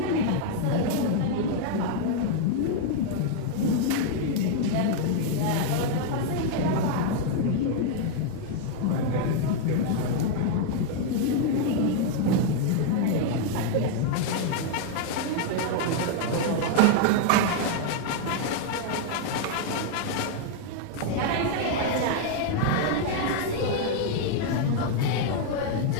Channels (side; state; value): both; different; correlation 0.00